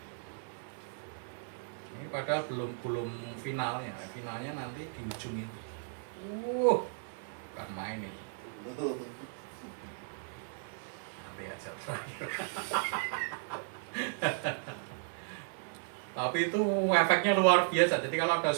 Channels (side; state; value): left; silent; 54 dB below the other